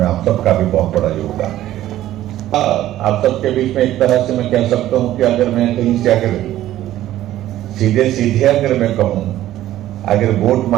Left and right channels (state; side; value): quieter; left; 13.8 dB